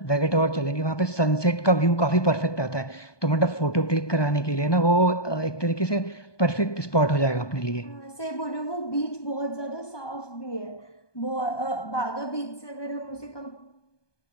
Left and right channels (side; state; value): right; late; 1.2 ms